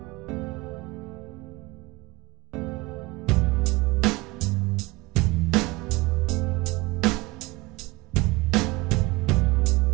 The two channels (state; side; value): quieter; left; 22.4 dB